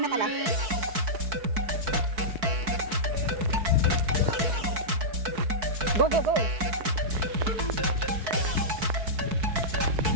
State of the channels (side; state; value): left; late; 4.6 ms